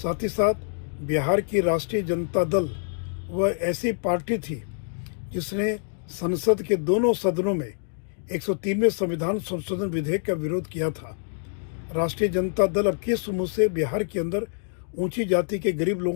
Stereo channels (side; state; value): right; silent; digital silence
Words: ही साथ बिहार की राष्ट्रीय जनता दल वह ऐसी पार्टी थी जिसने संसद के दोनों सदनों में 103वें संविधान संशोधन विधेयक का विरोध किया था। राष्ट्रीय जनता दल अब किस मुंह से बिहार के अंदर ऊंची जाति के गरीब